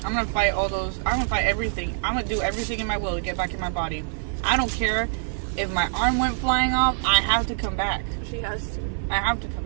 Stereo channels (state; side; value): silent; left; 55 dB below the other